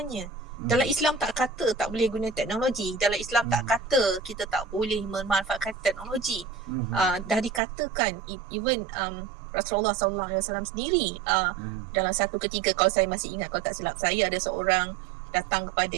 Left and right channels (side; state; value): left; drops out; at 7.6 s